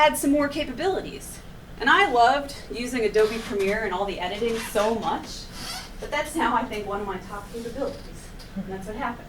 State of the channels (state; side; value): identical; both; correlation 1.00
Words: some more capabilities. And I loved using Adobe Premiere and all the editing so much that that's now, I think, one of my top capabilities. And that's what happened.